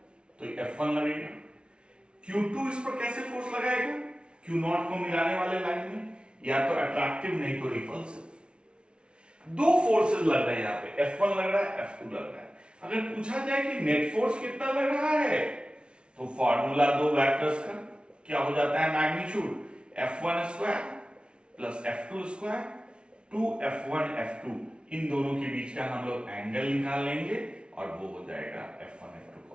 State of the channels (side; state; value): left; late; 0.057 ms